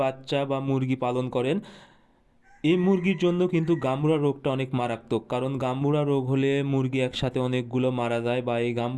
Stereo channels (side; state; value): both; identical; correlation 1.00